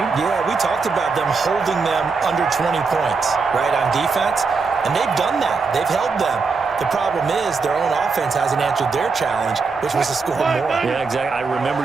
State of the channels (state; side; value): quieter; left; 4.6 dB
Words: Yeah, we talked about them holding them under 20 points, right, on defense, and they've done that. They've held them. The problem is their own offense hasn't answered their challenge, which was to score more. Yeah, exactly. I remember